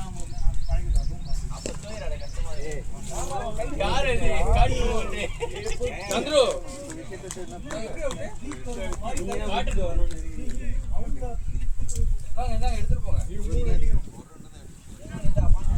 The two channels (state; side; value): identical; both; correlation 1.00